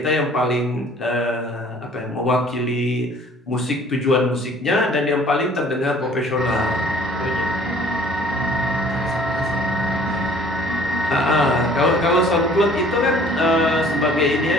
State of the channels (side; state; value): both; normal; correlation 0.53